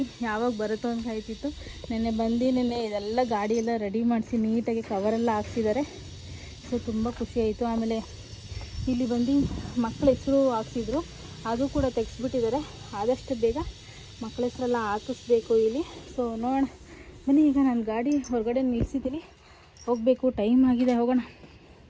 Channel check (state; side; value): identical; both; correlation 1.00